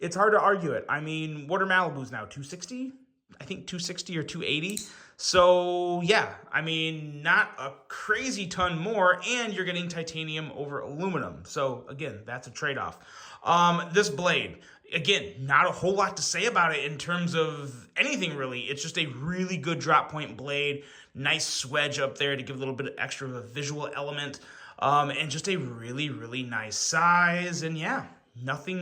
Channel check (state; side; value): identical; both; correlation 1.00